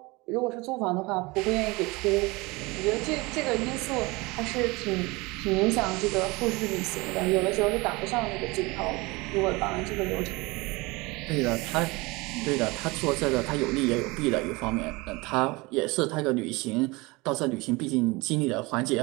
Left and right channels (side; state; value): left; quieter; 24.0 dB